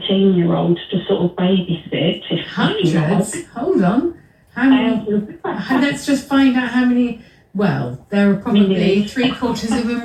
to sort of babysit. Hundreds? Hold on. How many? Let's just find out how many. Well, there are probably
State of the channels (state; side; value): identical; both; correlation 1.00